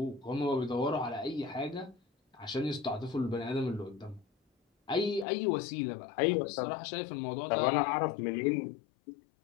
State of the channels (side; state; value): right; drops out; at 5.2 s